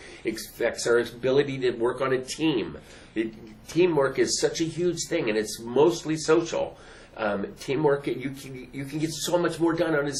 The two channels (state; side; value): identical; both; correlation 1.00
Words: It affects our ability to work on a team. Teamwork is such a huge thing, and it's mostly social. Teamwork, you can get so much more done on